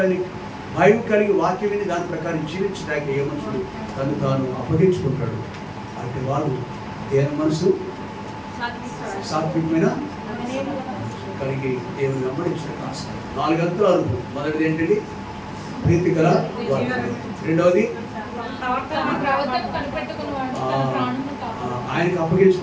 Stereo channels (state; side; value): identical; both; correlation 1.00